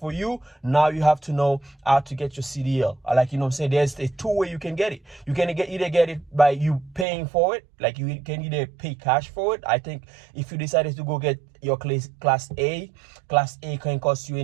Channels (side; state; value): left; drops out; at 7.1 s